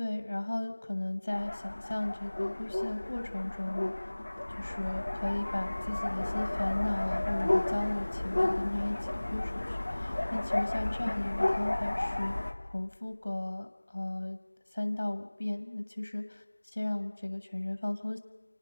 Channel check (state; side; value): inverted; both; correlation -1.00